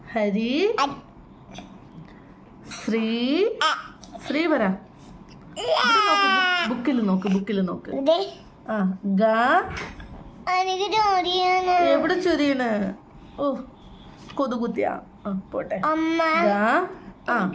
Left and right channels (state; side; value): identical; both; correlation 1.00